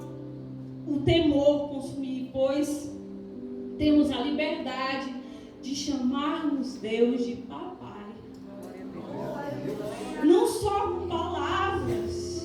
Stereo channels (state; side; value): identical; both; correlation 1.00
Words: o temor consumir, pois temos a liberdade de chamarmos Deus de papai. Não só com palavras.